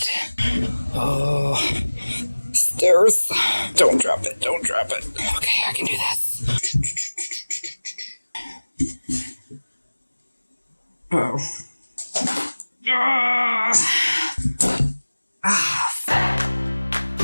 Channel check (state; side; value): inverted; both; correlation -1.00